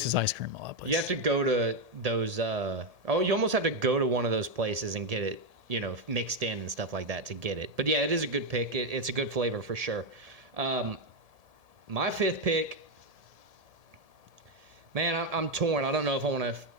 ice cream a lot. You have to go to those. You almost have to go to one of those places and get it, you know, mixed in and stuff like that to get it. But yeah, it is a good pick. It's a good flavor for sure. My 5th pick. Man, I'm torn. I don't know if I want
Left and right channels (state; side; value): late; left; 1.7 ms